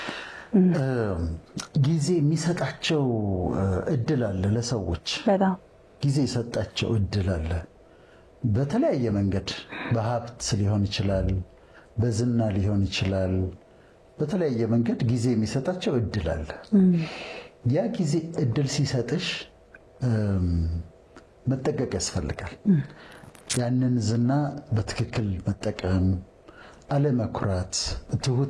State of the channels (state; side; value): identical; both; correlation 1.00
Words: ጊዜ የሚሰጣቸው እድል አለ። ለሰዎች በጣም ጊዜ የሰጣቸው እድል አለ። በተለያየ መንገድ በሀብት ሊሆን ይችላል፣ በዝና ሊሆን ይችላል። በተለያየ መንገድ ጊዜ የሚሰጣቸው እድል አለ። ያ ጊዜ እድል ሲሰጥሽ መጠቀቅ ያስፈልጋል። ያንን ዝና በትክክል መጠቀም፣ አለመኩራት፣